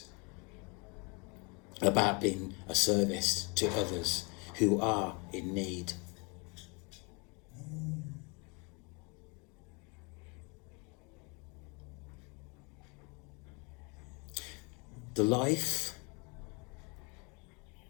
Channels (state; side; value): quieter; right; 31.3 dB